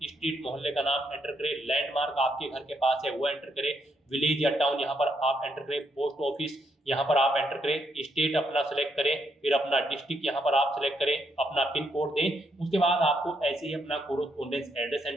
स्ट्रीट मोहल्ले का नाम एंटर करें, लैंडमार्क आपके घर के पास है वो एंटर करें, विलेज या टाउन यहाँ पर आप एंटर करें, पोस्ट ऑफिस यहाँ पर आप एंटर करें, स्टेट अपना सेलेक्ट करें, फिर अपना डिस्ट्रिक्ट यहाँ पर आप सेलेक्ट करें, अपना पिन कोड दें। उसके बाद आपको ऐसे ही अपना कोरोस्पोंडेंस एड्रेस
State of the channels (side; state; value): both; normal; correlation 0.76